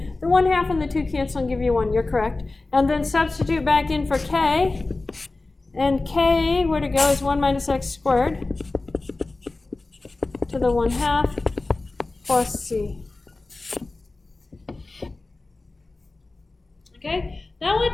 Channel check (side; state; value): right; quieter; 3.3 dB